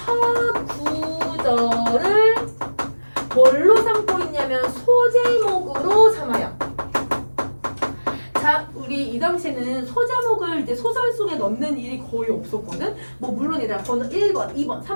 구절을 뭘로 삼고 있냐면 소제목으로 삼아요. 자, 우리 이 당시에는 소제목을 이제 소설 속에 넣는 일이 거의 없었거든. 뭐 물론 얘들아 번호 1번, 2번,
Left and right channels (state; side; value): inverted; both; correlation -1.00